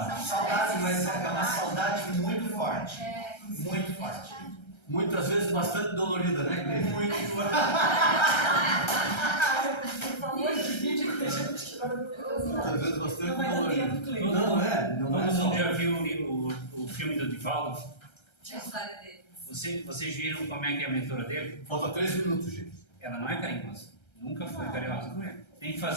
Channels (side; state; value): right; late; 1.3 ms